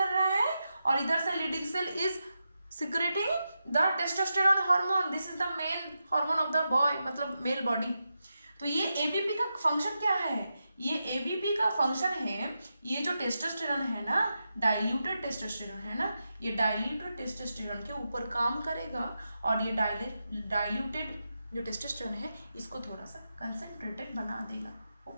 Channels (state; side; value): inverted; both; correlation -0.88